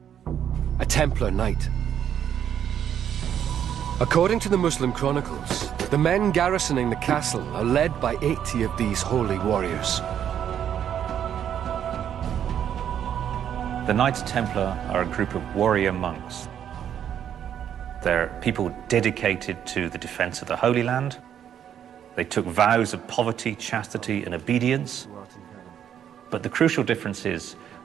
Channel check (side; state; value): left; quieter; 9.4 dB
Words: a Templar Knight. According to the Muslim chronicles, the men garrisoning the castle are led by 80 of these holy warriors. The Knights Templar are a group of warrior monks. They're people dedicated to the defense of the Holy Land. They took vows of poverty, chastity, and obedience. But the crucial difference is